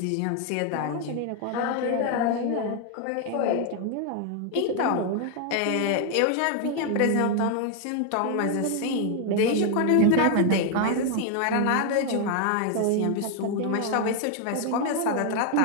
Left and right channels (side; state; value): both; different; correlation 0.00